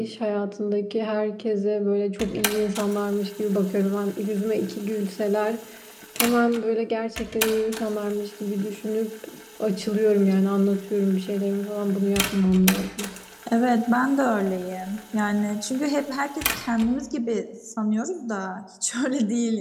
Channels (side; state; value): both; identical; correlation 1.00